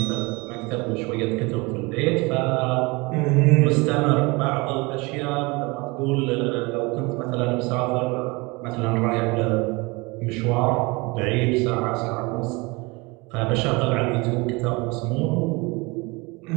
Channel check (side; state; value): left; quieter; 25.9 dB